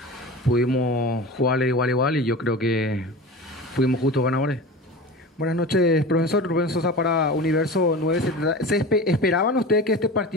pudimos jugarle de igual a igual y yo creo que fuimos justos ganadores. Buenas noches, profesor. Rubén Sosa para Universo 970. ¿Esperaban ustedes que este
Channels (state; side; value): normal; both; correlation 0.32